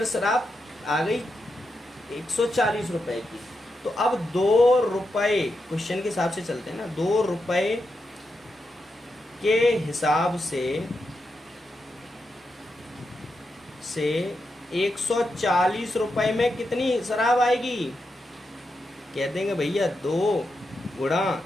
शराब आ गई 140 रुपये की। तो अब 2 रुपये, क्वेश्चन के हिसाब से चलते हैं ना, 2 रुपये के हिसाब से 140 रुपये में कितनी शराब आएगी, कह देंगे भैया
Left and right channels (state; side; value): normal; both; correlation 0.86